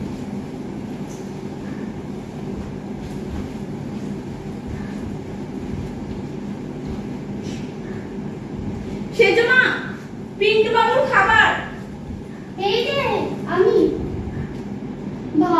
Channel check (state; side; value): identical; both; correlation 1.00